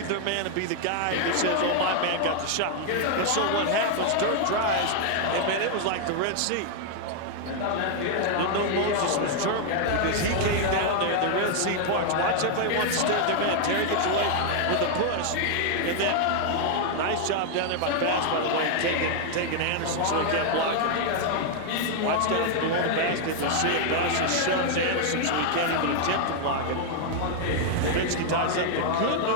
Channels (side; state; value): both; different; correlation 0.00